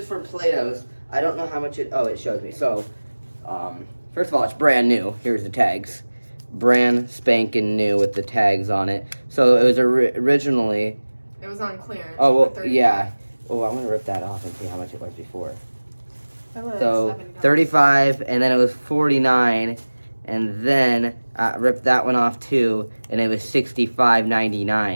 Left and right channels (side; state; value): both; inverted; correlation -1.00